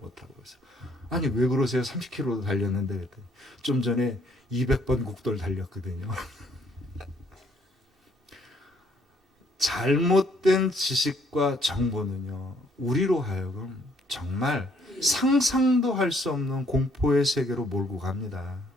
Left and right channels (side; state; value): both; normal; correlation 0.66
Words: 그래서 왜 그러세요? 30km로 달렸는데. 그랬더니 좀 전에 200번 국도를 달렸거든요. 잘못된 지식과 정보는요, 우리로 하여금 정말 상상도 할 수 없는 공포의 세계로 몰고 갑니다.